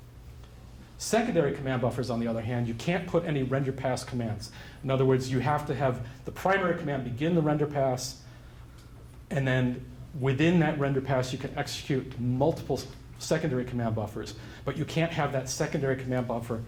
Secondary command buffers, on the other hand, you can't put any render pass commands. In other words, you have to have the primary command begin the render pass, and then within that render pass, you can execute multiple secondary command buffers, but you can't have that secondary command buffer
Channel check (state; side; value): identical; both; correlation 1.00